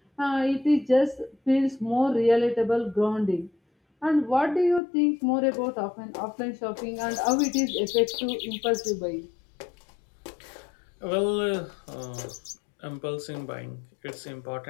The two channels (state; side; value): drops out; right; at 4.8 s